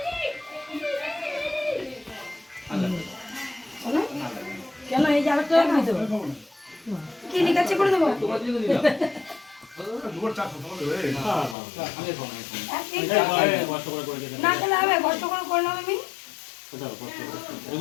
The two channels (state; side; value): drops out; right; at 11.6 s